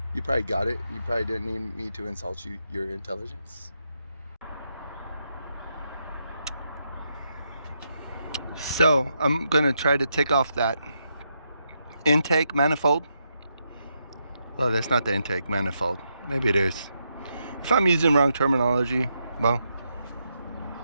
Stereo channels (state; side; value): inverted; both; correlation -0.81